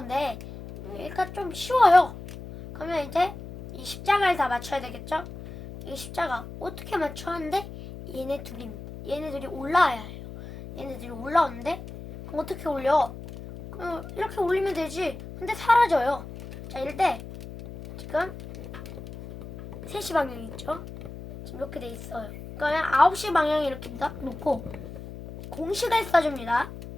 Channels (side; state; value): left; noise; hum, 12 dB below the sound